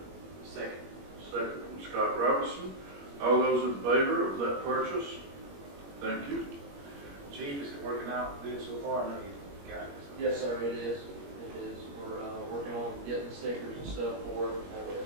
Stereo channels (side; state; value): left; late; 21 ms